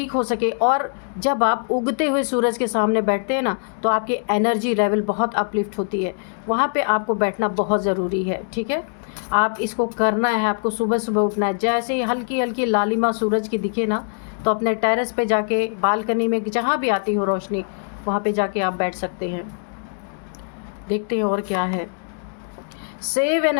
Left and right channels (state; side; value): silent; right; 64 dB below the other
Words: हो सके। और जब आप उगते हुए सूरज के सामने बैठते हैं ना, तो आपकी एनर्जी लेवल बहुत अपलिफ्ट होती है, वहाँ पे आपको बैठना बहुत ज़रूरी है, ठीक है। आप इसको करना है, आपको सुबह सुबह उठना है। जैसे ही हल्की हल्की लालिमा सूरज की दिखे ना, तो अपने टेरेस पे जाके, बालकनी में, जहाँ भी आती हो रोशनी, वहाँ पे जाके आप बैठ सकते हैं। देखते हैं और क्या है। Save